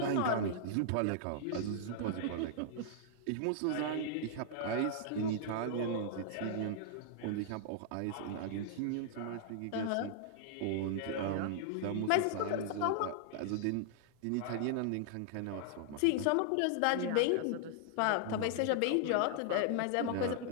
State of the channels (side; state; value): both; different; correlation -0.01